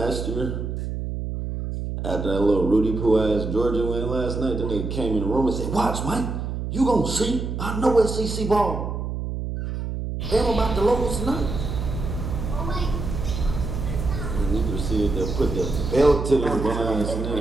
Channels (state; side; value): noise; right; hum, 4 dB below the sound